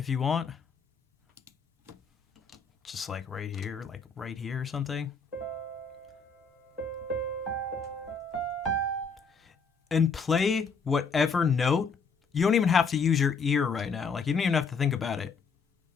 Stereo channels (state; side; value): quieter; right; 5.0 dB